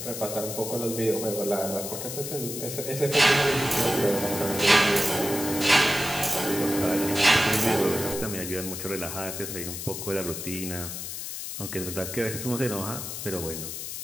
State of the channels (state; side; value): noise; left; hiss, 7 dB below the sound